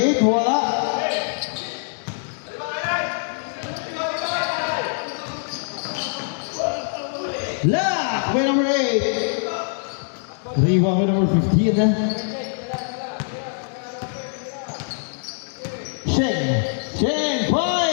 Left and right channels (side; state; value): right; silent; digital silence